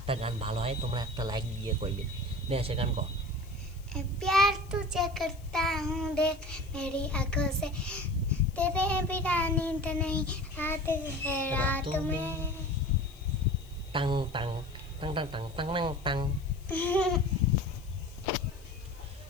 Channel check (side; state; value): left; noise; hiss, 26 dB below the sound